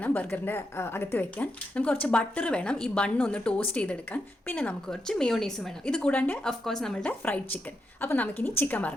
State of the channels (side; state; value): both; normal; correlation 0.84